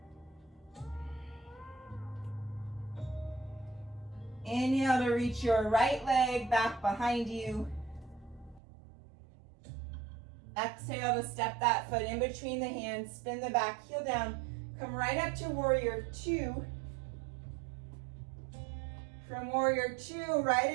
Inhale to reach your right leg back behind you. Exhale to step that foot in between the hands, spin the back heel down, come right up to warrior two. From warrior two, right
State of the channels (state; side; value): drops out; left; at 8.6 s